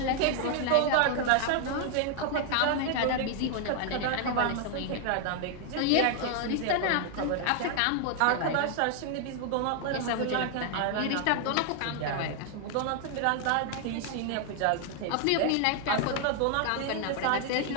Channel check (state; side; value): different; both; correlation 0.00